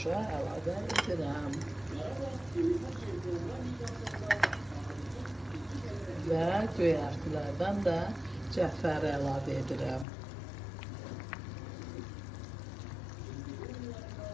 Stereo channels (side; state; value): right; drops out; at 10.1 s